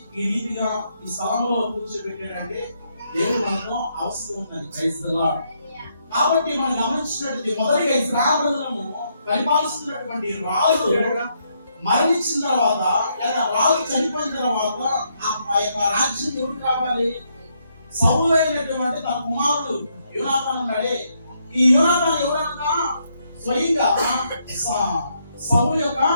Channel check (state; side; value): inverted; both; correlation -0.76